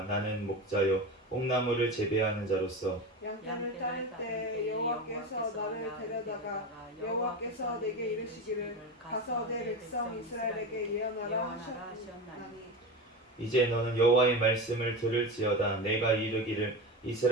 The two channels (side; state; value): both; normal; correlation 0.24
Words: 나는 목자요 뽕나무를 재배하는 자로서 양떼를 따를 때 여호와께서 나를 데려다가 여호와께서 내게 이르시기를 가서 내 백성 이스라엘에게 예언하라 하셨나니 이제 너는 여호와의 말씀을 들을지어다. 내가 이르기를